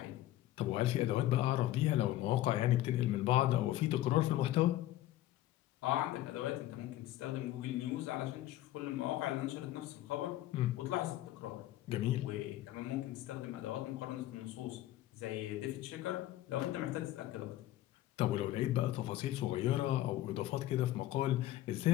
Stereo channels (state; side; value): quieter; right; 14.7 dB